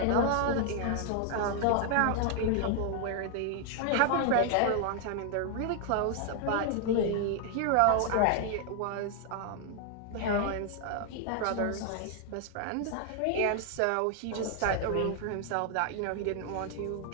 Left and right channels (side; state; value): both; different; correlation 0.00